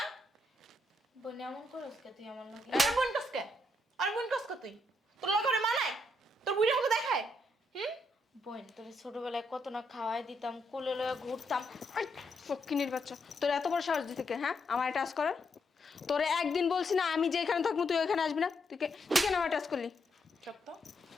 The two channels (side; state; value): both; normal; correlation 0.78